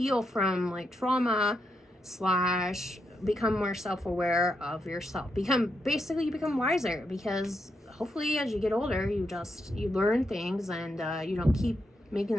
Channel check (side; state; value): both; normal; correlation 0.82